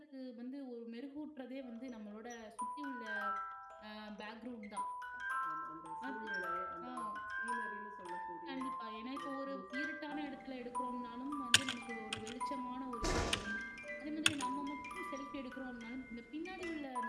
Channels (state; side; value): identical; both; correlation 1.00